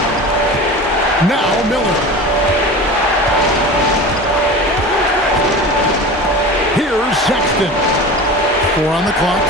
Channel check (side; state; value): both; normal; correlation 0.33